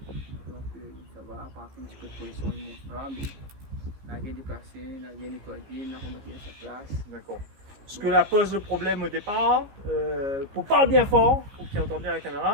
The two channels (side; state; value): left; late; 15 ms